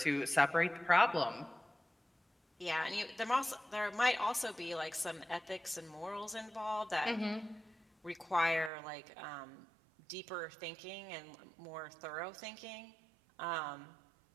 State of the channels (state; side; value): drops out; left; at 8.7 s